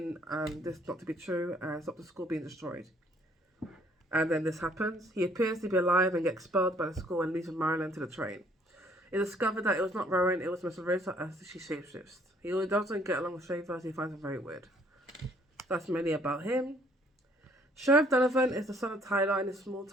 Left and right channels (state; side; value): normal; both; correlation 0.62